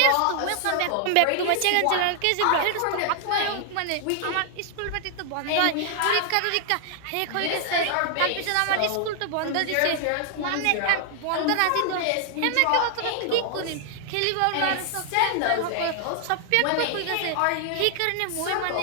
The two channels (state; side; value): different; both; correlation 0.00